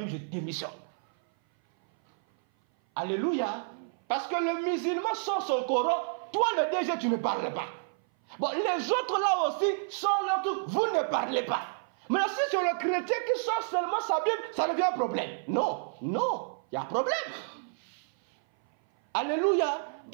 je démissionne. Alléluia. Parce que le musulman sort son Coran, toi le DG tu ne parles pas. Bon, les autres là aussi sortent leur truc, vous ne parlez pas. Mais si c'est le chrétien qui sort seulement sa Bible, ça devient un problème. Non, non, il y a un problème. Alléluia,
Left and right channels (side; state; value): left; silent; 57 dB below the other